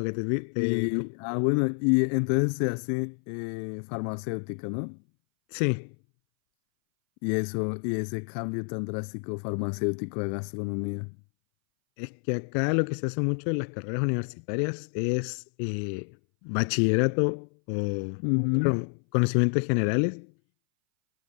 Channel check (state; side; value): silent; right; 59 dB below the other